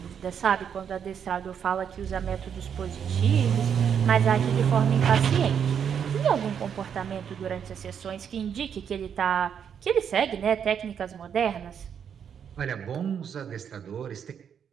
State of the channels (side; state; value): left; quieter; 7.9 dB